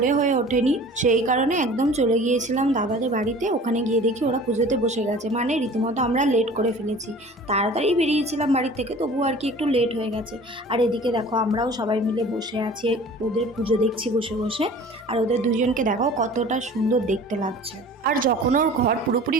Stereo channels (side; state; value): both; normal; correlation 0.44